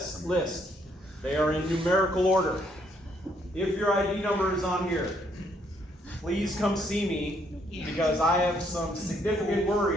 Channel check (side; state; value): both; normal; correlation 0.70